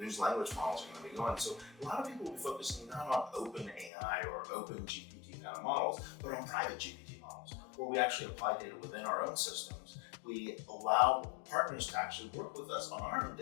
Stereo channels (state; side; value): drops out; right; at 3.9 s